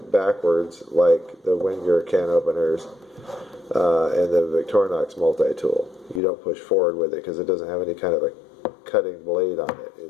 backwards like the Wenger can openers and the Victorinox multi-tool. You don't push forward with it because it doesn't have any kind of a cutting blade on it.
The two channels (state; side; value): drops out; right; at 6.2 s